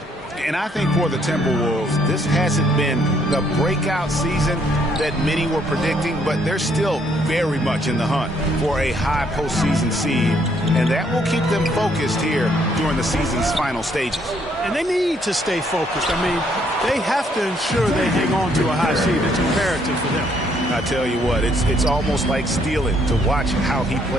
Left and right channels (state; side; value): normal; both; correlation 0.68